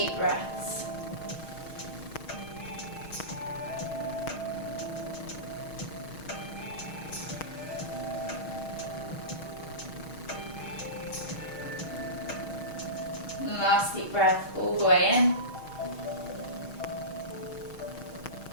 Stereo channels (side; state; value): right; late; 6.3 ms